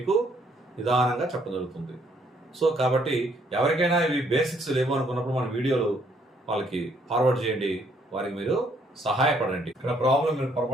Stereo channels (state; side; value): normal; both; correlation 0.68